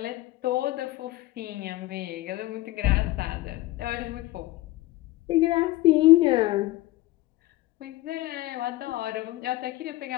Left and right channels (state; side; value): quieter; right; 18.0 dB